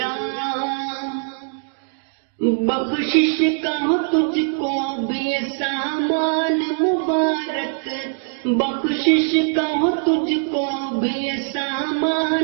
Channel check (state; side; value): silent; left; 61 dB below the other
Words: بخشش کا ہو تجھ کو بھی یہ سامان مبارک، بخشش کا ہو تجھ کو بھی یہ